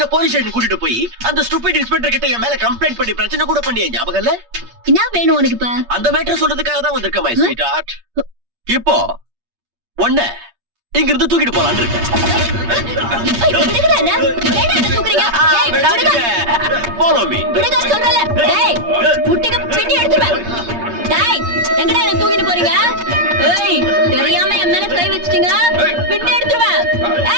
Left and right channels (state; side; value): late; left; 8.6 ms